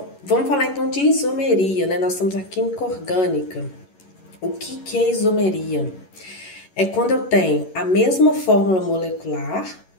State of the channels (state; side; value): late; right; 11 ms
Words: vamos falar então de isomeria, né? Nós estamos na química orgânica. O que é isomeria? É quando eu tenho a mesma fórmula molecular,